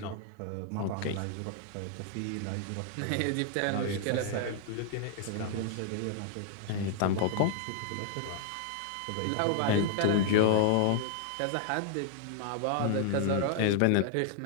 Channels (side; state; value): both; different; correlation 0.00